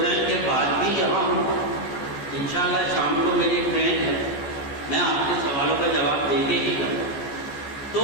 کے بعد بھی یہاں ہوں، انشاءاللہ شام کو میری ٹرین ہے، میں آپ کے سوالوں کا جواب دے کے ہی کروں۔ تو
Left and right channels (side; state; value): right; late; 14 ms